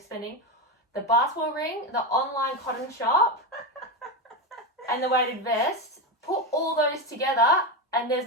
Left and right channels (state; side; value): normal; both; correlation 0.13